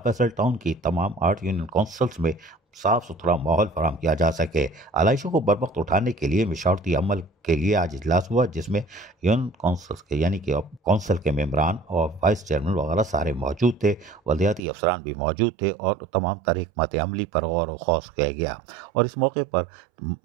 فیصل ٹاؤن کی تمام 8 یونین کونسلز میں صاف ستھرا ماحول فراہم کیا جا سکے۔ علائشوں کو بروقت اٹھانے کے لیے مشاورتی عمل کے لیے آج اجلاس ہوا، جس میں یونین کونسلز کے یعنی کہ کونسل کے ممبران اور وائس چیئرمین وغیرہ سارے موجود تھے، بلدیاتی افسران بھی موجود تھے، اور تمام تر حکمت عملی پر غور و خوض کیا گیا، اور اس موقع پر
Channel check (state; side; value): drops out; left; at 14.6 s